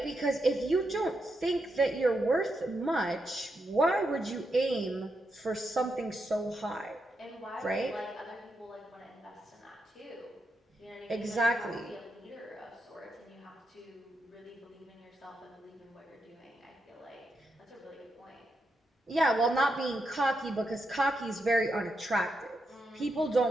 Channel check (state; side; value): normal; both; correlation 0.84